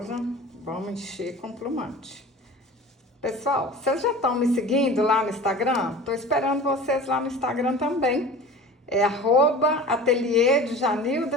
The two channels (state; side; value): normal; both; correlation 0.38